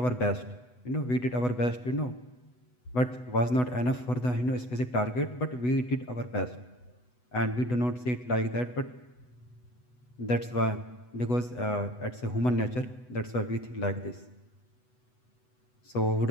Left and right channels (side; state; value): right; late; 8.1 ms